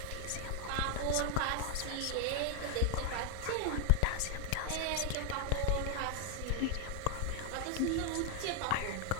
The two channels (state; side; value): different; both; correlation 0.00